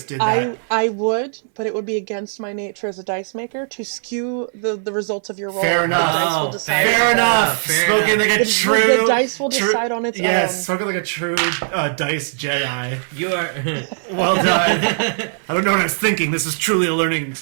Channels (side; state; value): left; silent; digital silence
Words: did that. I would, but it would be against my nature as a dice maker to skew the results of your roll. Fair enough. The dice will decide. Fair enough. Spoken like a true. The dice will decide on its own. Yes, spoken like a true dice Jedi. You are Well done. I don't know what I was thinking. This was truly a learning